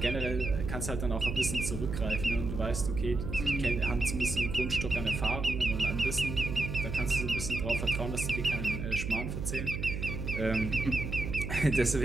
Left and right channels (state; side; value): noise; right; hum, 4 dB below the sound